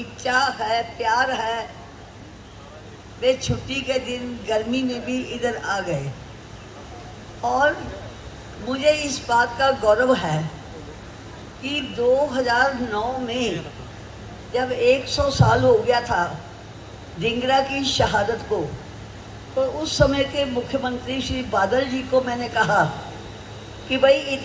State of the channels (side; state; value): both; identical; correlation 1.00